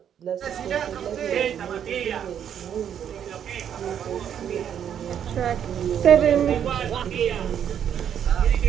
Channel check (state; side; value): quieter; left; 9.0 dB